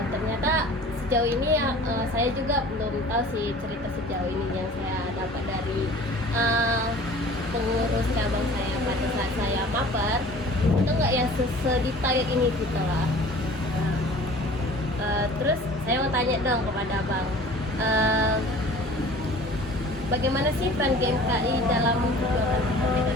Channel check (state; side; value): normal; both; correlation 0.45